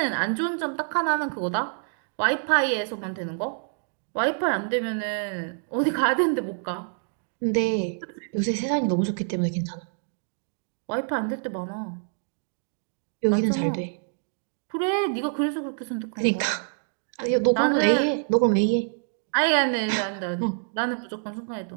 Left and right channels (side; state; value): left; silent; digital silence